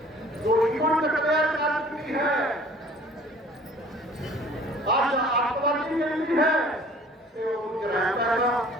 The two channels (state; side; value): normal; both; correlation 0.51